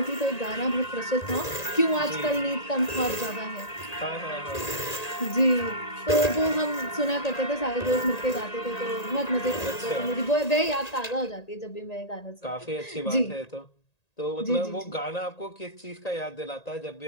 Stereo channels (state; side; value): late; right; 1.8 ms